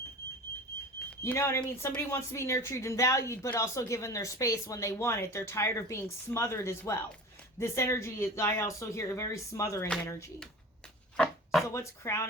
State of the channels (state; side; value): normal; both; correlation 0.37